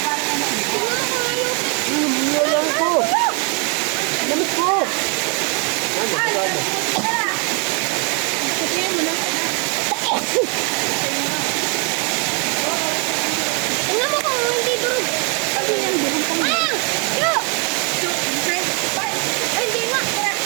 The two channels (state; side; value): quieter; left; 35.6 dB